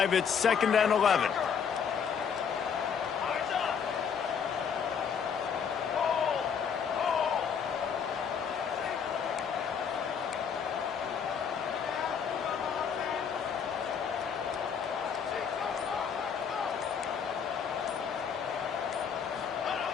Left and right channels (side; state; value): right; quieter; 7.0 dB